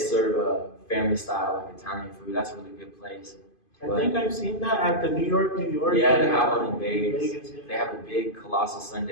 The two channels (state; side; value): late; right; 2.5 ms